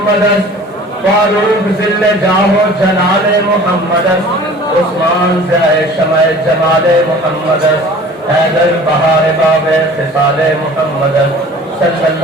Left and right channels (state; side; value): normal; both; correlation 0.45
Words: فاروق ذل جاہ و جلال محمد عثمان ضیاء شمع جمال محمد حیدر بہار باب خصال محمد صلی